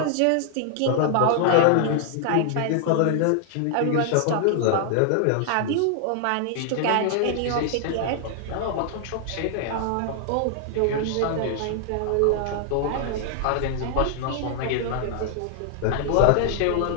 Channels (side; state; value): both; different; correlation 0.00